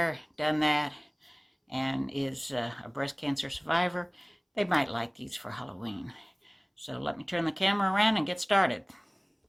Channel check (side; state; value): both; identical; correlation 1.00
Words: done that, and is a breast cancer survivor, they might like these for Halloween. So let me turn the camera around and get started.